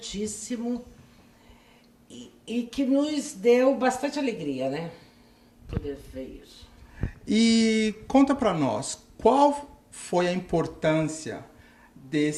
e que nos deu bastante alegria, né? Poder ver isso. E conta para nós, qual foi a importância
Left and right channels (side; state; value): both; identical; correlation 1.00